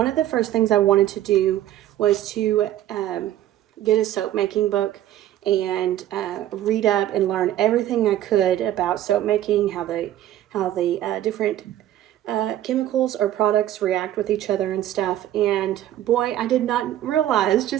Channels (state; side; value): quieter; left; 12.7 dB